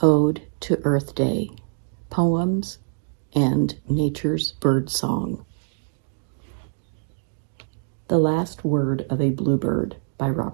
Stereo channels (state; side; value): silent; left; digital silence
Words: Ode to Earth Day, Poems and Nature's Bird Song. The Last Word of a Bluebird by